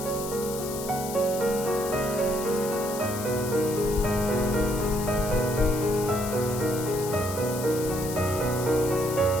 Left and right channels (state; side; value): noise; left; hiss, 10 dB below the sound